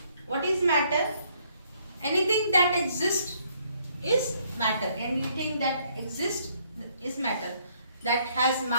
What is matter? Anything that exists is matter. Anything that exists is matter. That has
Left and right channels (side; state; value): both; inverted; correlation -0.67